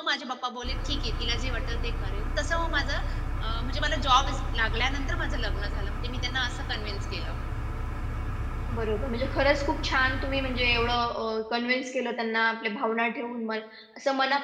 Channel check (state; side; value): identical; both; correlation 1.00